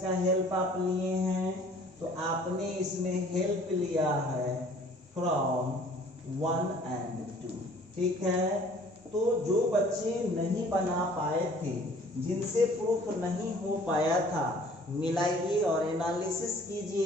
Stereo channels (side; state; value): both; normal; correlation 0.53